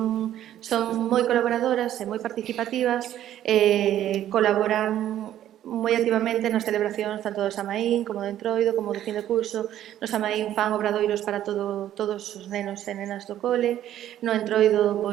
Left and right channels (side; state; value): left; quieter; 11.9 dB